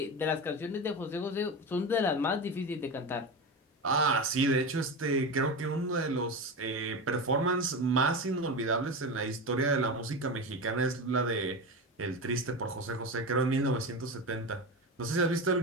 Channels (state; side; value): normal; both; correlation 0.22